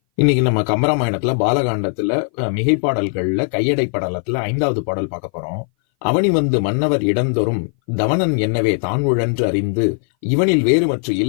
இன்னைக்கு நம்ம கம்பராமாயணத்துல பாலகாண்டத்துல மிகைப்பாடல்கள்ல கையடை படலத்துல 5வது பாடல் பார்க்க போறோம். அவனி வந்து மன்னவர் இடந்தொறும் தவனன் என்னவே தான் உழன்று அறிந்து இவனில் வேறுமற்று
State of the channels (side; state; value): right; silent; 59 dB below the other